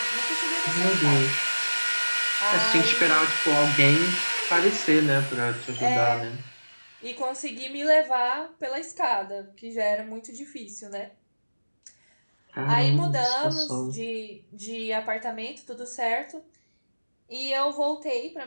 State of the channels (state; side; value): inverted; both; correlation -1.00